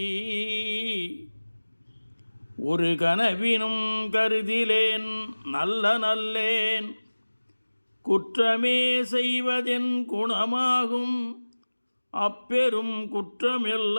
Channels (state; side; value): inverted; both; correlation -1.00